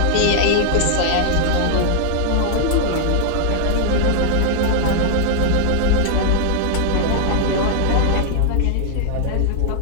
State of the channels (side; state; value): both; different; correlation -0.01